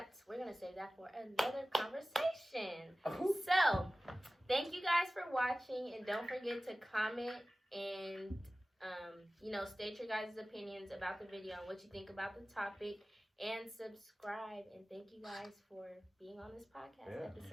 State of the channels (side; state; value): both; normal; correlation 0.97